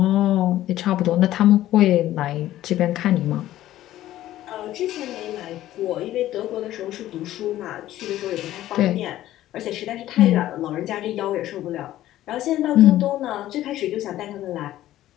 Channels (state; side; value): quieter; right; 14.0 dB